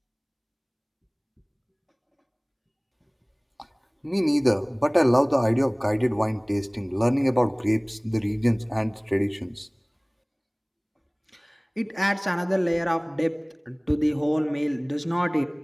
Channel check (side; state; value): both; identical; correlation 1.00